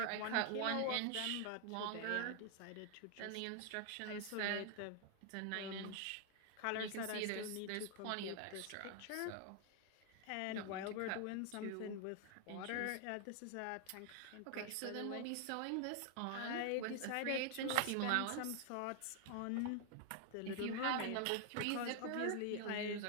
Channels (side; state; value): both; different; correlation 0.00